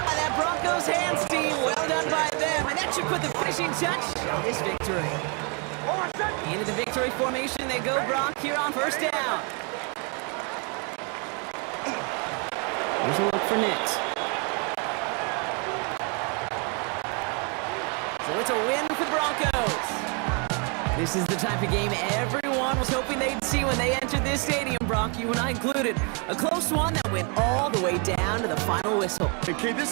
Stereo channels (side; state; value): left; quieter; 35.5 dB